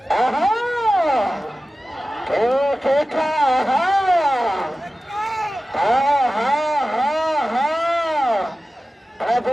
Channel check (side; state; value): both; normal; correlation 0.95